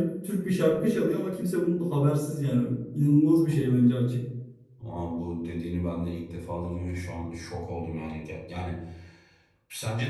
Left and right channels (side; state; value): both; identical; correlation 1.00